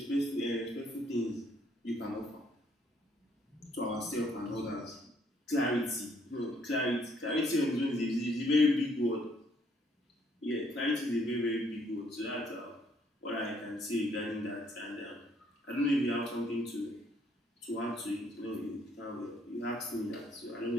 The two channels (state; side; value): normal; both; correlation 0.67